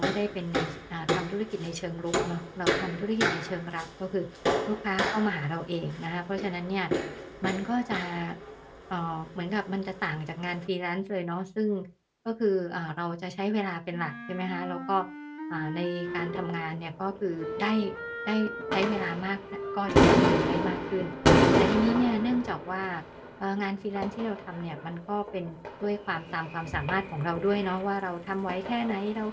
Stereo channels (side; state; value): both; identical; correlation 1.00